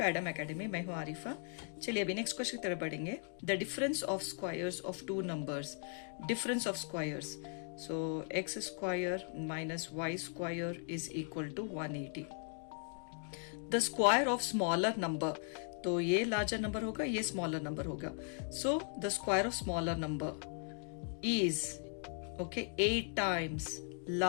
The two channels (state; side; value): silent; right; 52 dB below the other